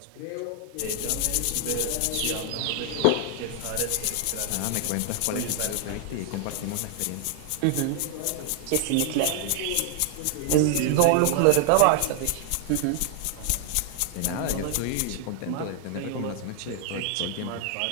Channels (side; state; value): both; different; correlation 0.00